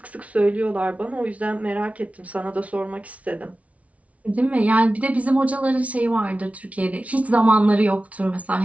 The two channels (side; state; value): left; late; 0.066 ms